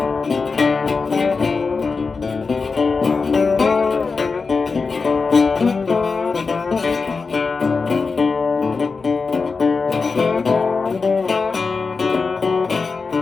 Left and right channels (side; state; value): right; quieter; 4.6 dB